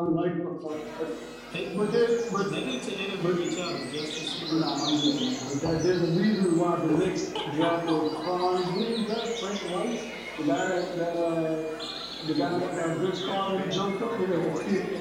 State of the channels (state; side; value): identical; both; correlation 1.00